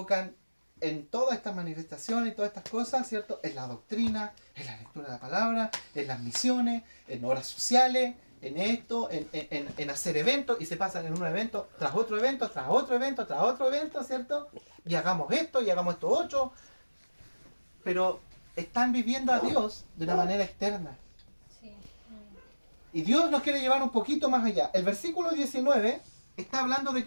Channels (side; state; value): both; inverted; correlation -1.00